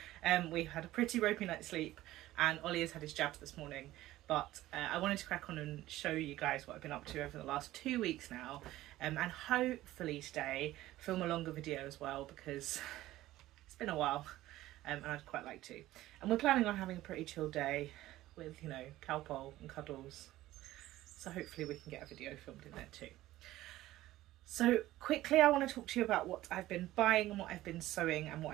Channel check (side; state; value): left; quieter; 15.8 dB